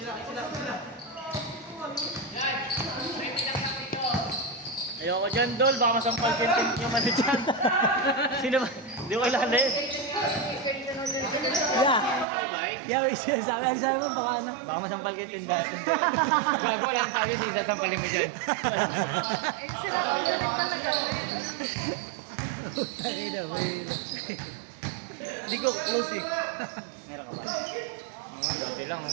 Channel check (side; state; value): left; drops out; at 12.2 s